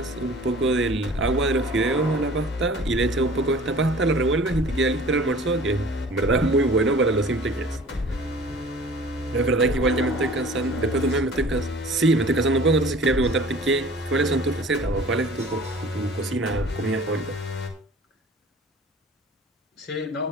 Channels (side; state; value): both; normal; correlation 0.46